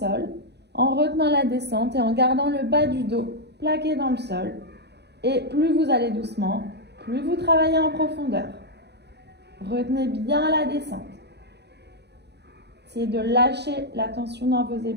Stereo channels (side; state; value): left; late; 0.49 ms